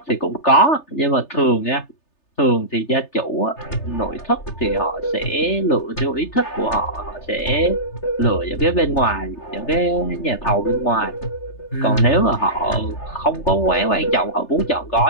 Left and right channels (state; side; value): late; right; 3.3 ms